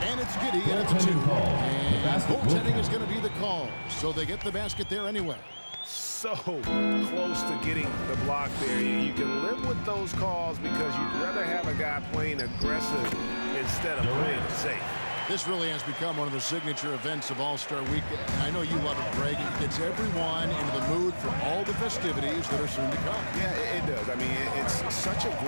and it's Giddy at the 2. And goaltending is going to be the call, so they get the basket there anyway. So close to getting the block there. You can live with those calls because you'd rather have a guy playing aggressive instead of playing safe. This really has become one of the signature events of All-Star Weekend. I know you love it, Greg. It gets everyone into the mood for all the festivities that are soon to come. Yeah, it does. I mean, it's such a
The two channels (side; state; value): both; inverted; correlation -1.00